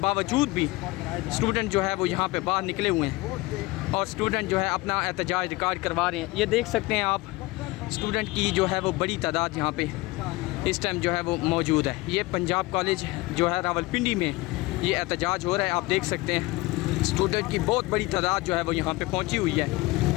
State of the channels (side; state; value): right; quieter; 21.6 dB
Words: भी स्टूडेंट जो है वो यहाँ पे बाहर निकले हुए हैं और स्टूडेंट जो है अपना एहतजाज रिकॉर्ड करवा रहे हैं। ये देख सकते हैं आप स्टूडेंट की जो है वो बड़ी तादाद यहाँ पे इस टाइम जो है वो मौजूद है। ये पंजाब कॉलेज जो है रावलपिंडी में ये एहतजाज हो रहा है। आप देख सकते हैं स्टूडेंट की बहुत बड़ी तादाद जो है वो यहाँ पे पहुँची हुई